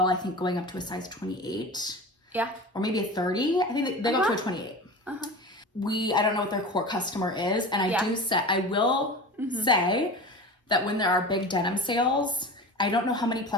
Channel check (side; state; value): both; normal; correlation 0.32